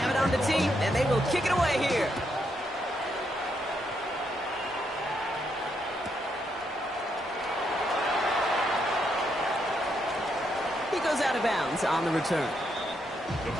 it on the tee, and they will kick it away here. He goes out of bounds on the return.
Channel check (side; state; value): both; normal; correlation 0.78